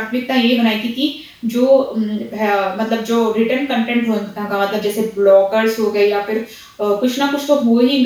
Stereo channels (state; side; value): identical; both; correlation 1.00